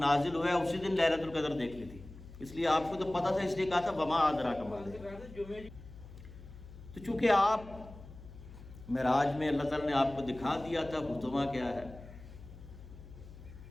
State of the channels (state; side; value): noise; left; hum, 16 dB below the sound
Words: ہوا ہے اسی دن لیلۃ القدر دیکھ لی تھی، اس لیے آپ کو تو پتہ تھا، اس لیے کہا تھا وما ادراک ما لیلۃ القدر. تو چونکہ آپ معراج میں اللہ تعالیٰ نے آپ کو دکھا دیا تھا حطمہ کیا ہے.